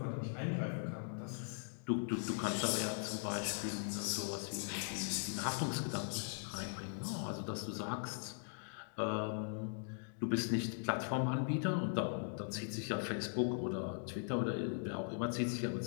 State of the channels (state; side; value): silent; right; digital silence